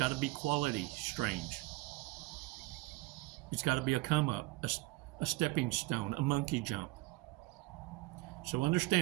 to be quality strange. It's got to be a come up, a stepping stone, a monkey jump. So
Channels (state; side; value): quieter; left; 21.2 dB